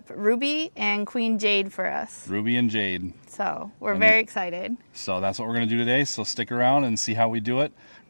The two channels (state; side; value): inverted; both; correlation -1.00